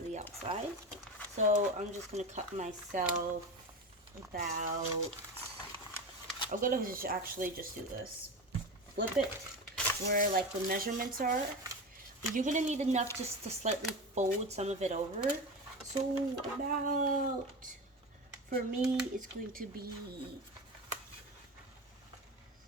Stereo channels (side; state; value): both; normal; correlation 0.25